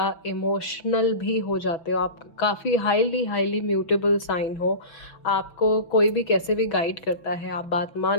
इमोशनल भी हो जाते हो। आप काफ़ी हाईली म्यूटेबल साइन हो। आपको कोई भी कैसे भी गाइड करता है, आप बात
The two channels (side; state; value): right; late; 6.0 ms